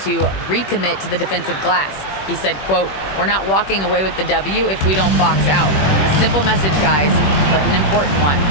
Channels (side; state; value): right; late; 21 ms